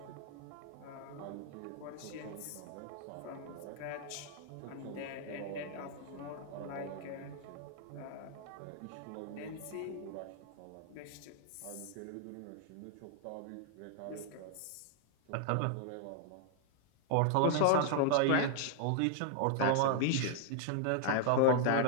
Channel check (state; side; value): different; both; correlation -0.01